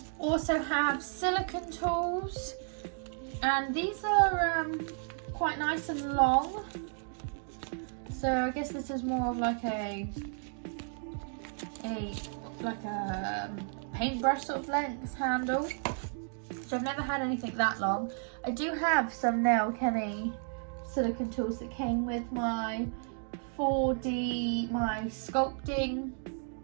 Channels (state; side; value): silent; left; 56 dB below the other